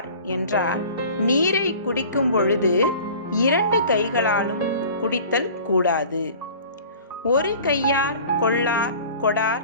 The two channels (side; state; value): both; inverted; correlation -0.44